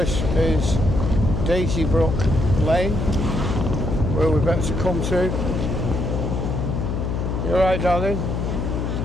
is Daisybrook Lane, where we're about to come to. You alright, darling?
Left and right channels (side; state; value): left; noise; hum, 1 dB below the sound